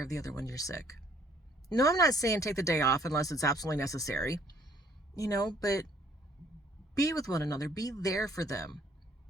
of the other when you're sick. No, I'm not saying take the day off unless it's absolutely necessary, but be with one another. Be there for them.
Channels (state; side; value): normal; both; correlation 0.61